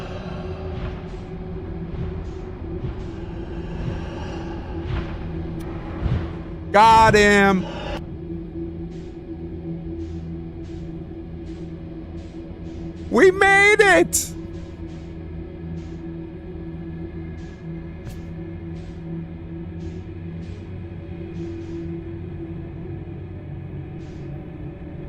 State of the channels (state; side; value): identical; both; correlation 1.00